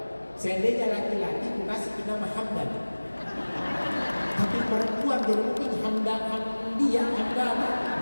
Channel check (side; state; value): both; inverted; correlation -1.00